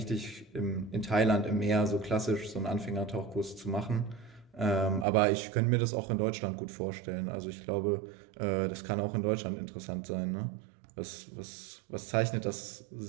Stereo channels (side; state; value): left; drops out; at 5.1 s